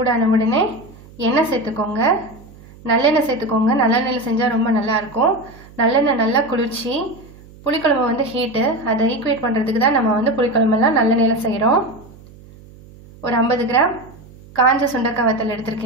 உடனே எண்ணெய் சேர்த்துக்கோங்க. நல்லெண்ணெய் சேர்த்துக்கோங்க. நல்லெண்ணெயில் செஞ்சால் ரொம்ப நல்லாயிருக்கும். நல்லெண்ணெய் நல்லா குளிர்ச்சி. புளிக்குழம்பு வந்து ஹீட்டு, அதை ஈக்குவேட் பண்ணுறதுக்கு தான் நம்ம வந்து புளிக்குழம்பெல்லாம் நல்லெண்ணெயில் செய்கிறோம். ஒரு 50 கிராம் காஞ்ச சுண்டைக்காய் வத்தல்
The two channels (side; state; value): right; noise; hum, 22 dB below the sound